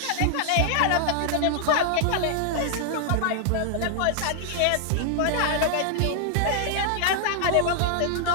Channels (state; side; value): different; both; correlation 0.00